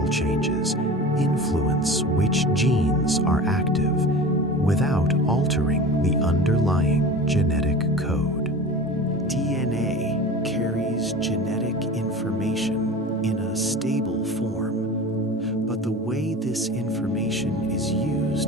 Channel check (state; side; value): normal; both; correlation 0.35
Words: changes influence which genes are active without altering the underlying genetic code. DNA carries genetic information in a stable form, but the way this information is